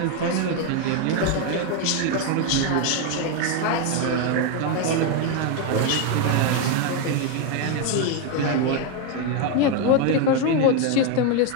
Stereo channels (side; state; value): both; different; correlation 0.02